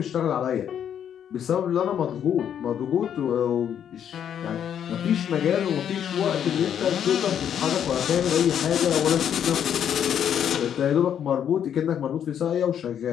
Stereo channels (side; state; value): right; quieter; 9.1 dB